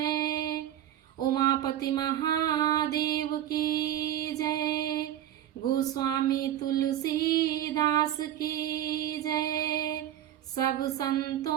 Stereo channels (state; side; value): quieter; left; 11.8 dB